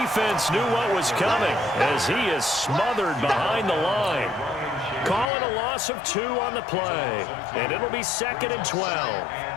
knew what was coming as he is smothered behind the line. Calling a loss of 2 on the play, and it'll be 2nd and 12.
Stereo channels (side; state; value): right; drops out; at 5.3 s